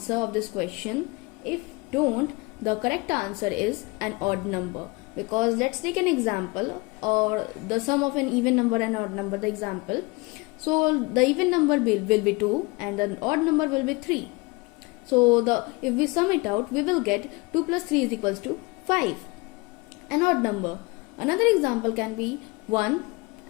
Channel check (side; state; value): right; quieter; 25.9 dB